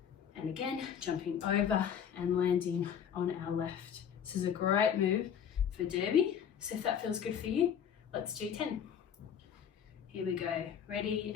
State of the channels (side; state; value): right; quieter; 8.3 dB